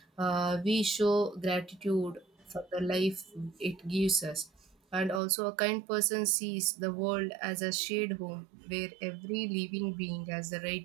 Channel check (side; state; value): left; drops out; at 5.2 s